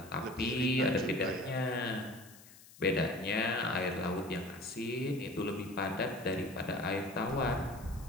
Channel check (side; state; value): left; noise; hiss, 21 dB below the sound